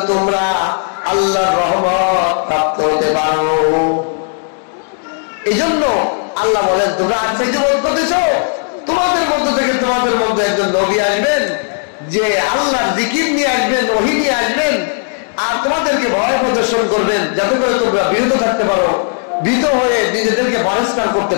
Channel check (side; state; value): right; silent; 56 dB below the other